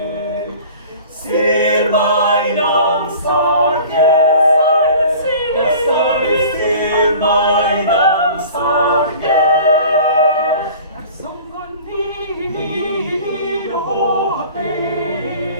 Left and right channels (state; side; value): inverted; both; correlation -0.44